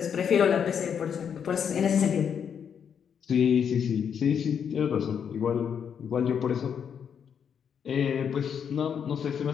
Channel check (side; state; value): right; quieter; 7.6 dB